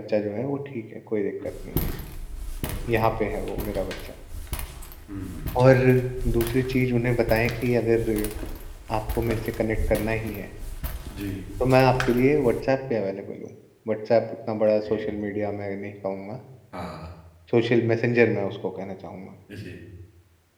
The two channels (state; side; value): identical; both; correlation 1.00